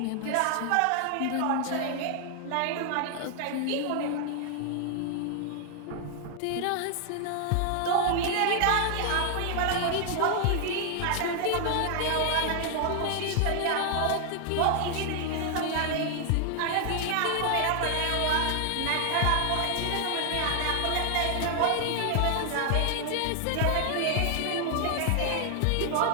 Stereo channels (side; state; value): both; different; correlation 0.00